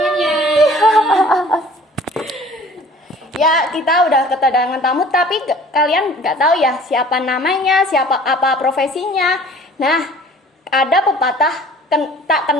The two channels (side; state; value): both; normal; correlation 0.49